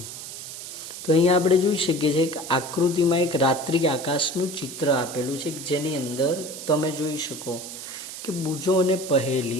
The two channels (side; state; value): right; noise; hiss, 10 dB below the sound